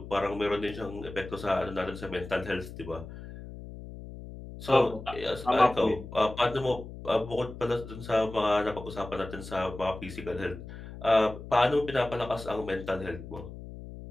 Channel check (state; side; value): noise; left; hum, 12 dB below the sound